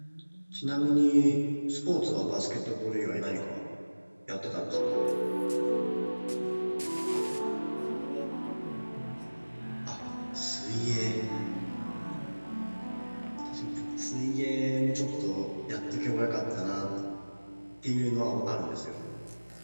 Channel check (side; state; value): both; inverted; correlation -1.00